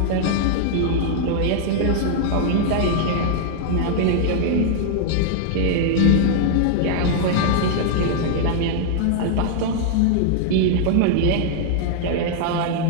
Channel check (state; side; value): different; both; correlation -0.01